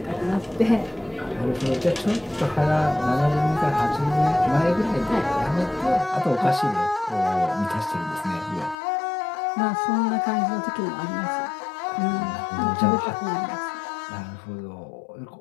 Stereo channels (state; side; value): drops out; right; at 8.8 s